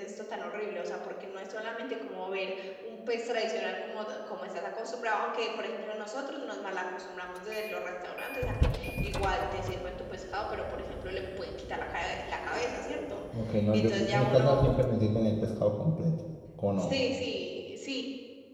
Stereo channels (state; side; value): identical; both; correlation 1.00